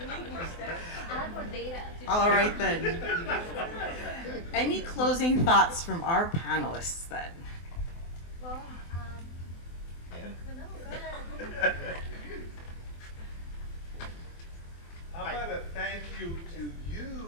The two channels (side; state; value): right; late; 24 ms